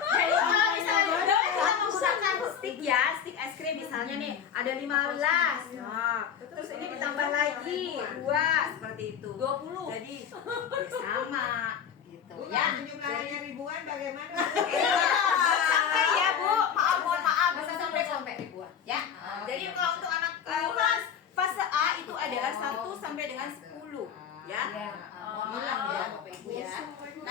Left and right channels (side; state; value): right; quieter; 8.0 dB